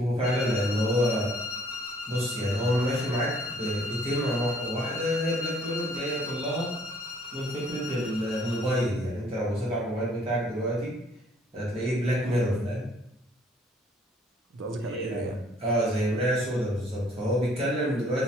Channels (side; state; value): both; normal; correlation 0.60